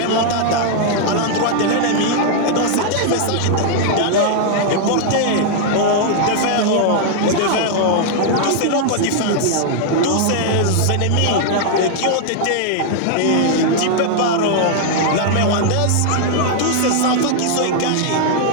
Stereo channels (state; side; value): different; both; correlation 0.00